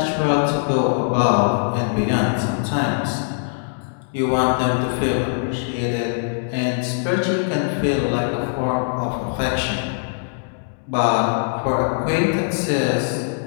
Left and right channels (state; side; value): silent; right; digital silence